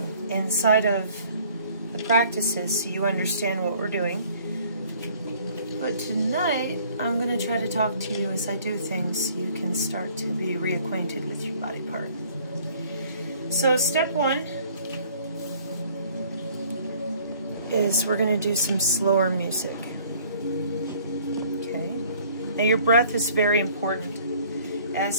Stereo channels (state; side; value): inverted; both; correlation -0.56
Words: inside of the practices so you understand what we're doing. But tonight, I'm going to try to talk to you as I do things so you can start to be reacquainted with your body part. So step one is we're going to do some slower music. Okay. Now your breath is very important,